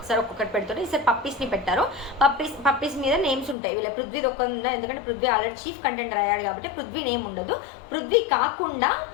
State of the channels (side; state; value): right; drops out; at 3.6 s